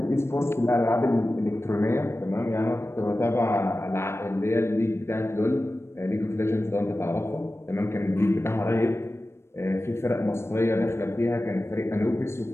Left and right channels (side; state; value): right; late; 0.12 ms